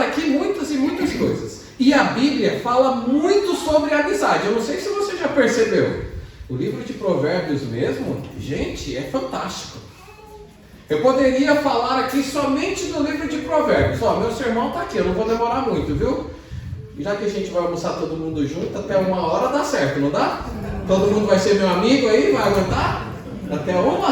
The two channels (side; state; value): both; identical; correlation 1.00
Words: aqui muitas e muitas coisas. E a Bíblia fala muito sobre a amizade. Eu não sei se você já percebeu. O livro de Provérbios mesmo, gente, é fantástico. Eu poderia falar aqui somente do livro de Provérbios. Ó, meu sermão está aqui, eu não vou demorar muito, viu? Já que a gente vai almoçar todo mundo junto, até 1h dá certo, não dá? Todo mundo vai ser meu amigo aí, vai aguentar? Até 1?